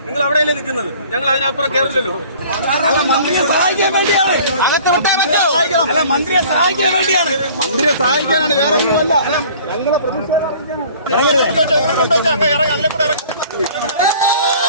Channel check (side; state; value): both; inverted; correlation -0.49